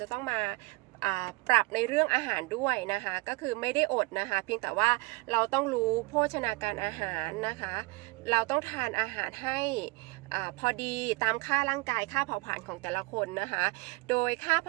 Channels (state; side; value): quieter; left; 25.2 dB